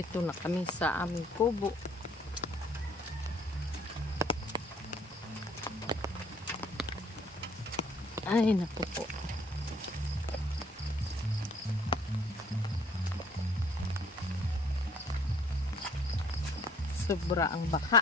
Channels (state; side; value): normal; both; correlation 0.59